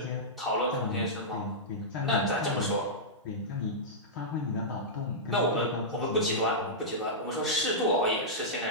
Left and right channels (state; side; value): normal; both; correlation -0.12